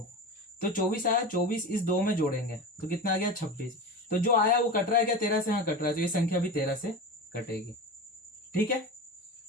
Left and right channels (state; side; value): normal; both; correlation 0.27